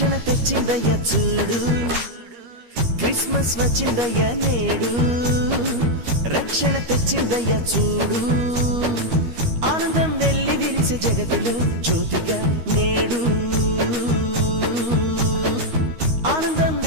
తెచ్చిందయ్య చూడు. క్రిస్మస్ వచ్చిందయ్య నేడు, రక్షణ తెచ్చిందయ్య చూడు. ఆనందం వెల్లి విరిసే జగతిలో జ్యోతిగా నేడు, ఆనందం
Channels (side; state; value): left; late; 13 ms